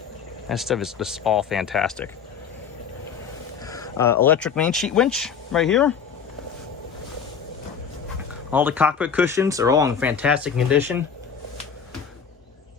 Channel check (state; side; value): quieter; right; 6.8 dB